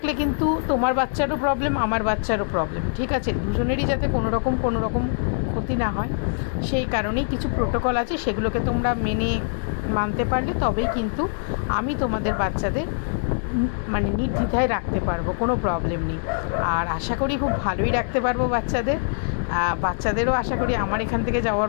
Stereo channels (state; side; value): silent; right; digital silence